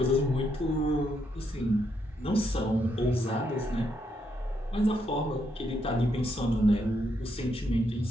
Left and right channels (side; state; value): both; normal; correlation 0.77